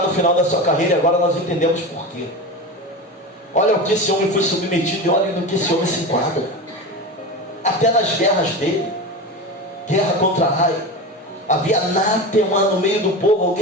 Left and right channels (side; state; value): both; normal; correlation 0.25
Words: no final da sua carreira e agora nós entendemos por quê. Olha o que esse homem foi submetido e olha no que esse homem se enquadra. Até nas guerras dele, guerra contra Ai, havia anátema no meio do povo.